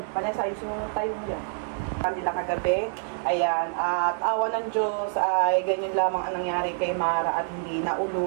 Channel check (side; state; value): left; silent; 60 dB below the other